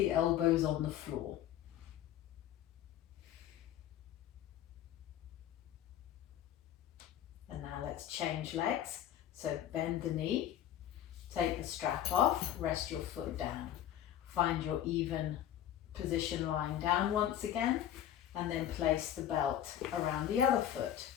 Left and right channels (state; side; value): quieter; right; 11.1 dB